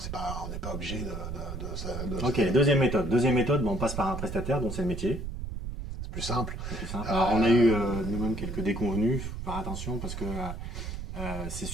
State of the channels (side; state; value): right; noise; rumble, 7 dB below the sound